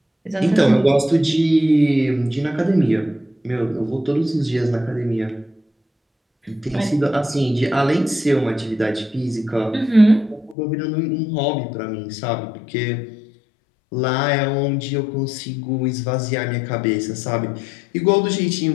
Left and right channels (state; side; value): drops out; right; at 10.6 s